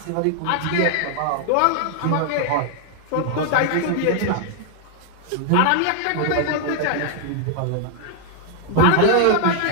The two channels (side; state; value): both; different; correlation 0.00